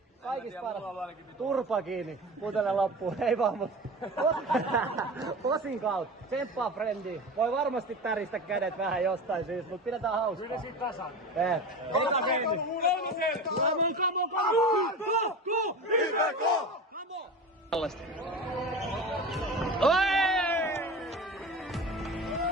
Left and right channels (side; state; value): both; normal; correlation 0.31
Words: Kaikista paras. Turpa kiinni. Putele loppuun. Ei vaan, mutta osin kautta. Tsemppaa frendi. Voi varmasti täristä kädet vähän jostain syystä, mutta pidetään hauskaa. Kyllä siitä tasan. Ota frendi. Come on. Tällaista.